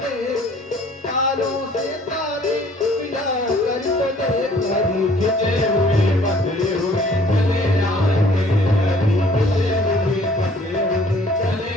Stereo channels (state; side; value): normal; both; correlation 0.56